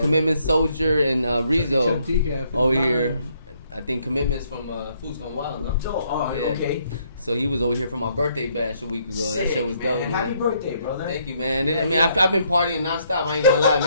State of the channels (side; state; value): both; inverted; correlation -0.70